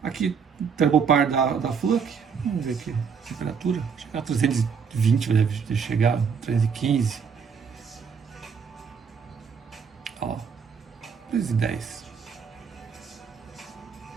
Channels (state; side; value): quieter; left; 6.3 dB